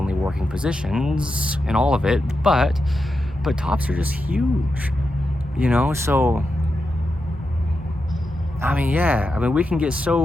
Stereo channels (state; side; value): normal; both; correlation 0.88